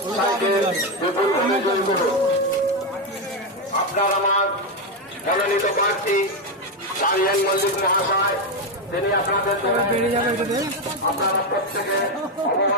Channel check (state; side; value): normal; both; correlation 0.07